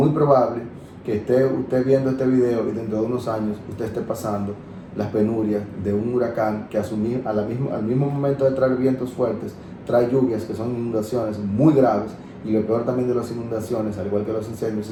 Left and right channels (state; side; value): identical; both; correlation 1.00